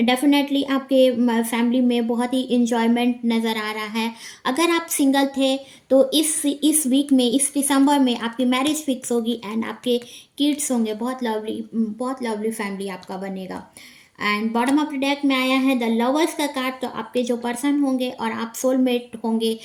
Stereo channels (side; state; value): both; identical; correlation 1.00